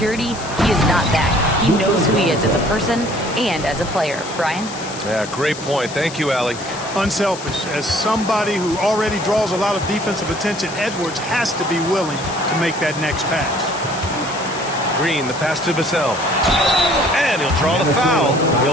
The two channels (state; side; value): noise; left; hiss, 13 dB below the sound